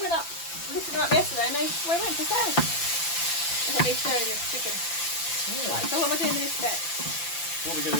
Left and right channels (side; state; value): right; late; 5.9 ms